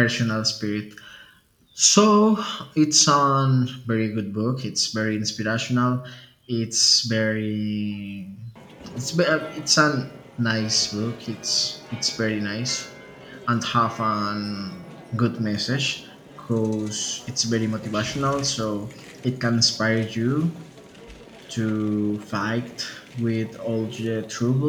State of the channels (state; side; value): identical; both; correlation 1.00